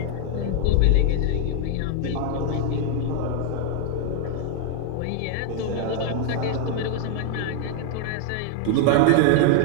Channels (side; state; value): both; different; correlation 0.00